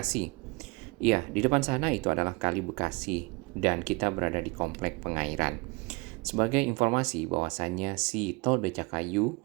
Iya, di depan sana itu adalah Kali Bekasi dan kita berada di Komplek Pengairan. Sebagai informasi bahwasannya si tol Becakayu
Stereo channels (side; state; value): left; quieter; 26.9 dB